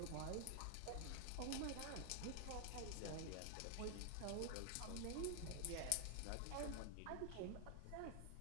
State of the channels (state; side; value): different; both; correlation 0.00